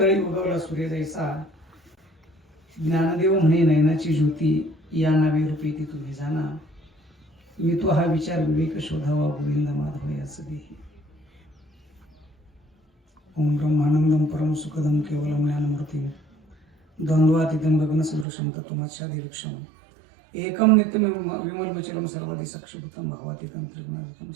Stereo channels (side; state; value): left; drops out; at 18.2 s